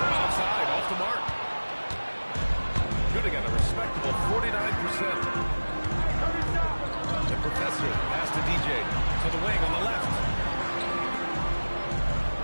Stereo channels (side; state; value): both; inverted; correlation -1.00